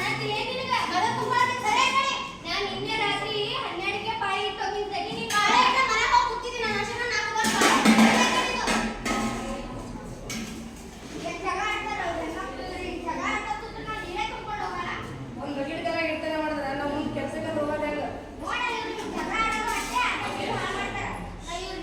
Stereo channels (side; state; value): both; identical; correlation 1.00